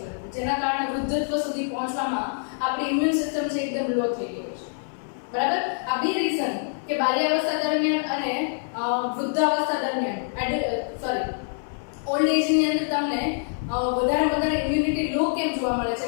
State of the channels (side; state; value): right; silent; 61 dB below the other